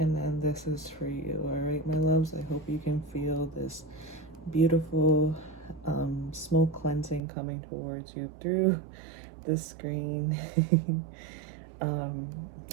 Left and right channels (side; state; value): left; drops out; at 7.2 s